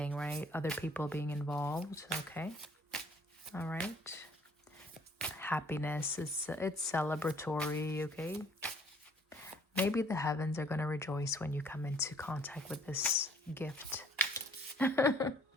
right? Other people being involved. Okay. All right. Happiness, it's celebratory. Okay. Maybe the heavens are going to rejoice when you come into contact with this gift. I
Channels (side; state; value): both; normal; correlation 0.59